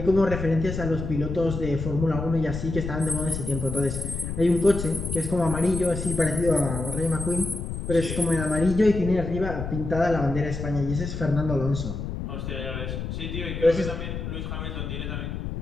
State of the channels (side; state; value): left; noise; rumble, 5 dB below the sound